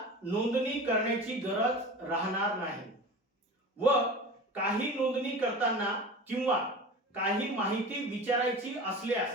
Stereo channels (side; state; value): both; normal; correlation 0.34